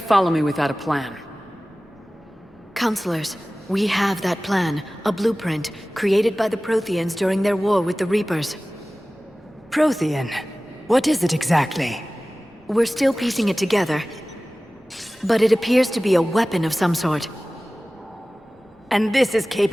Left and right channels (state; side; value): normal; both; correlation 0.97